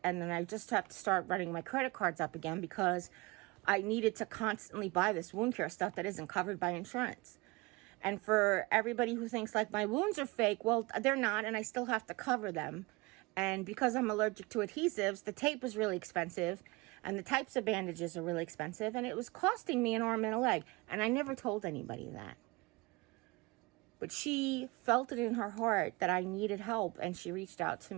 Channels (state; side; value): quieter; left; 24.6 dB